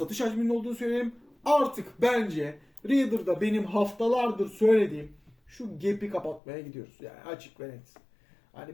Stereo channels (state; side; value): drops out; right; at 6.4 s